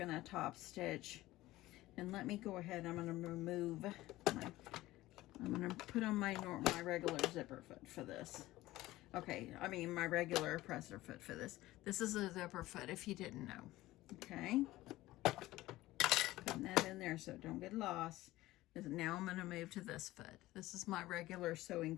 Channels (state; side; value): quieter; right; 17.2 dB